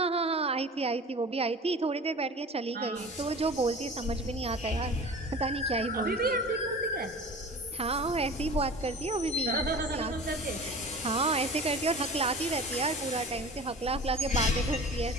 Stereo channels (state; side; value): normal; both; correlation 0.38